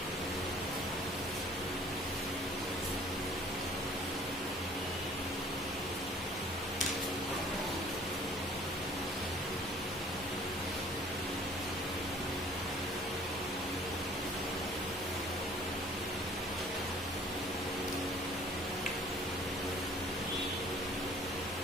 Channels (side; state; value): both; normal; correlation 0.53